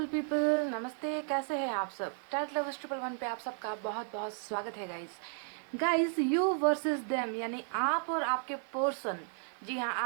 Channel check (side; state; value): left; silent; 55 dB below the other